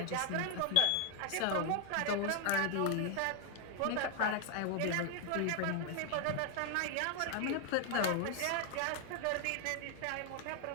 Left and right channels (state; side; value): different; both; correlation 0.00